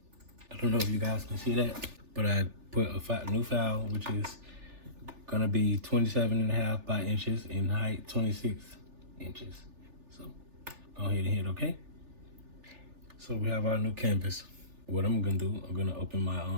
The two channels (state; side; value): late; left; 3.4 ms